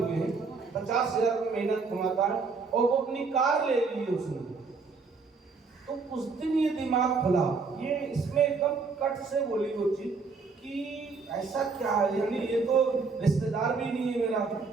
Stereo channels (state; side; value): quieter; left; 4.6 dB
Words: हैं, 50,000 रुपये महीना कमाता है और वो अपनी कार ले ली है उसने। तो उस दिन ये दिमाग खुला, ये इसमें एकदम कट से बोली वो चीज कि ऐसा क्या है, यानी ये तो रिश्तेदार भी नहीं है मेरा।